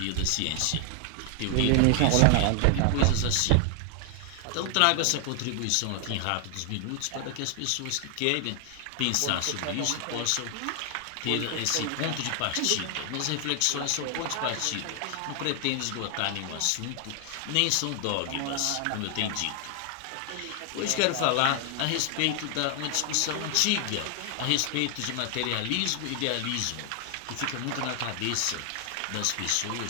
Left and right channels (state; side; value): different; both; correlation 0.00